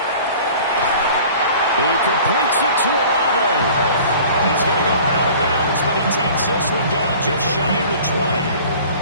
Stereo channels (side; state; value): both; inverted; correlation -0.46